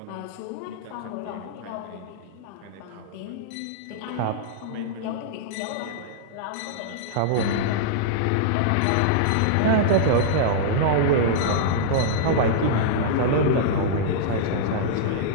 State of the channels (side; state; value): both; different; correlation -0.02